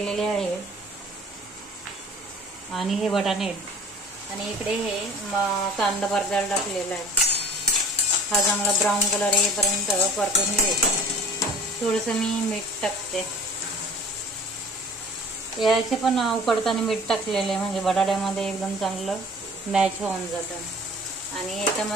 आहे आणि हे वाटाणे आणि इकडे हे कांदा परतायला टाकलेला आहे। हा चांगला ब्राऊन कलर येईपर्यंत परतून घ्यायचा। थोडंसं मी मीठ टाकते, याचे पण उकडताना मीठ टाकलेलं आहे म्हणजे बटाट्यामध्ये एकदम चांगलं मॅच होऊन जातं। आणि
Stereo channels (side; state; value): both; normal; correlation 0.46